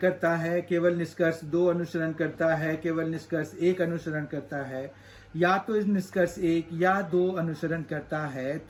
है, केवल निष्कर्ष दो अनुसरण करता है, केवल निष्कर्ष एक अनुसरण करता है, या तो इस निष्कर्ष एक या दो अनुसरण करता है,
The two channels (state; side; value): identical; both; correlation 1.00